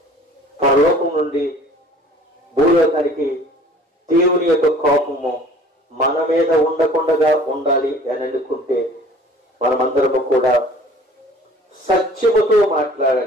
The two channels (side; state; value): both; normal; correlation 0.49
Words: పరలోకం నుండి భూలోకానికి దేవుని యొక్క కోపము మన మీద ఉండకుండా ఉండాలి అని అనుకుంటే మనమందరము కూడా సత్యముతో